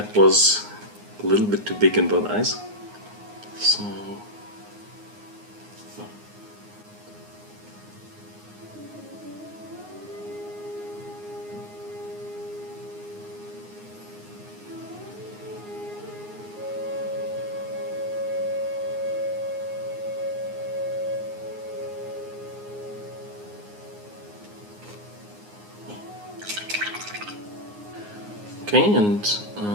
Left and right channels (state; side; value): late; left; 9.6 ms